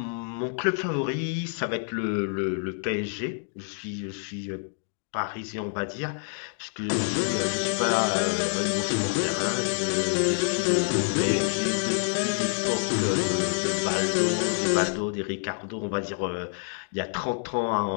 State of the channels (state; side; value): silent; right; digital silence